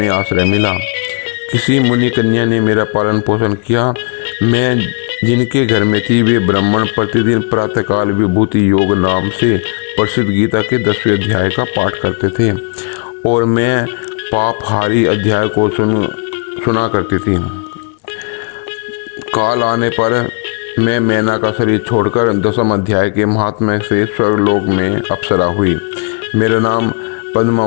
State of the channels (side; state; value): right; quieter; 34.8 dB